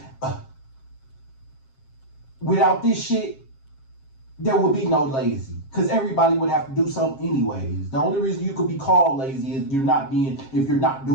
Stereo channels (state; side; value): late; right; 7.5 ms